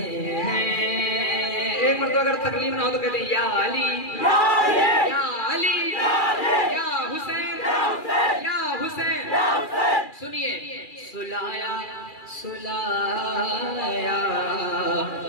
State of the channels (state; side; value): late; right; 2.4 ms